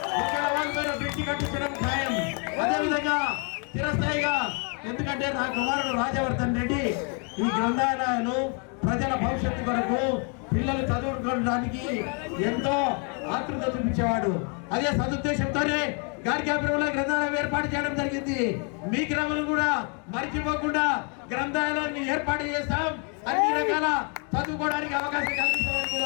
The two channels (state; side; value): quieter; right; 37.7 dB